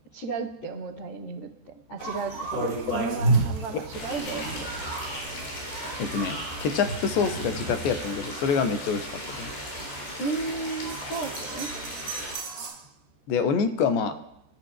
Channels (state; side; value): late; right; 14 ms